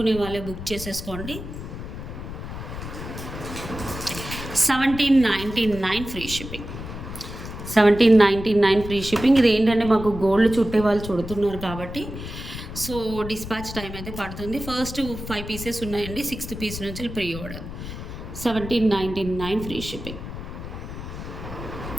వాళ్ళే బుక్ చేసేసుకోండి. 1799 ఫ్రీ షిప్పింగ్. 1799 free shipping. ఇది ఏంటంటే మాకు గోల్డ్ చుట్టే వాళ్ళు చుడుతున్నారు కాబట్టి సో డిస్పాచ్ టైం అయితే పడుతుంది. ఫస్ట్ 5 పీసెస్ ఉన్నాయండి. 6th పీస్ నుంచి ప్రీ ఆర్డర్. 1799 free shipping.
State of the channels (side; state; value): left; noise; rumble, 9 dB below the sound